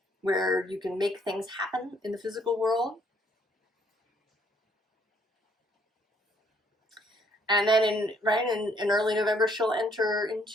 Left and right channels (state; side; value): normal; both; correlation 0.66